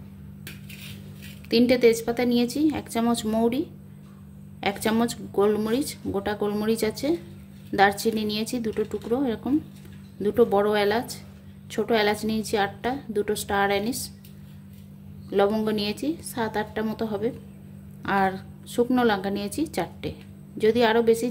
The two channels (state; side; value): identical; both; correlation 1.00